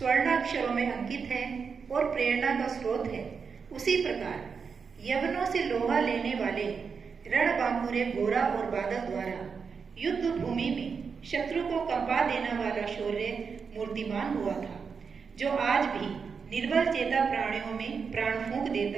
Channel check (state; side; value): quieter; left; 5.7 dB